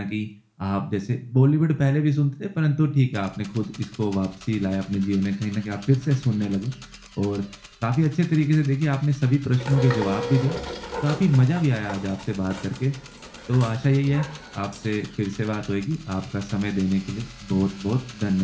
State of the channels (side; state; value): both; identical; correlation 1.00